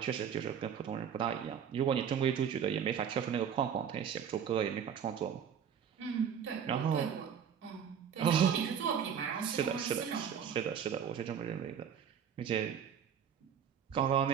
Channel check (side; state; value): left; quieter; 8.1 dB